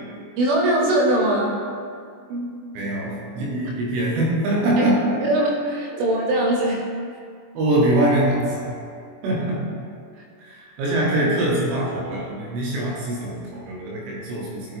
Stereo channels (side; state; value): left; late; 24 ms